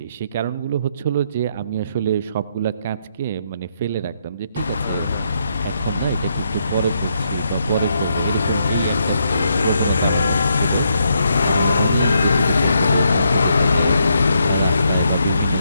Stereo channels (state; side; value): inverted; both; correlation -0.77